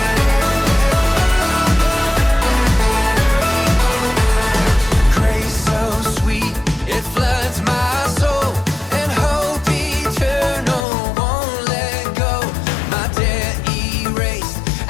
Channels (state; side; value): drops out; right; at 10.8 s